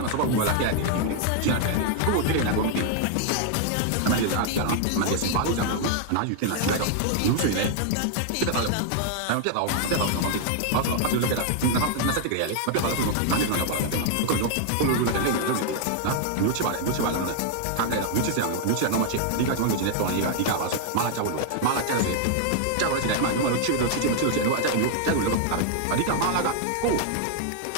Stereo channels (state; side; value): different; both; correlation 0.00